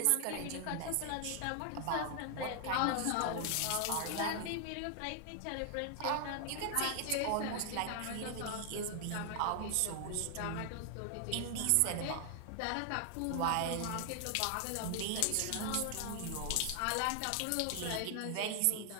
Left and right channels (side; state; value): both; different; correlation 0.00